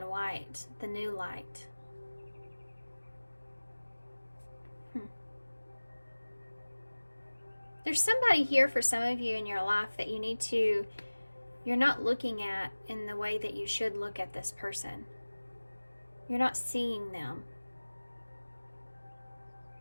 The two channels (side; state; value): both; inverted; correlation -1.00